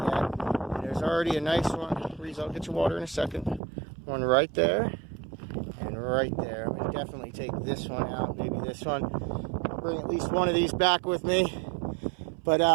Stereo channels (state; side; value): drops out; left; at 3.6 s